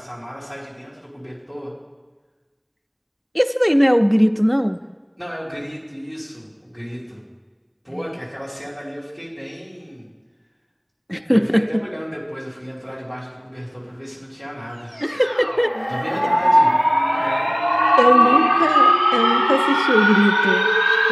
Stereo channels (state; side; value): identical; both; correlation 1.00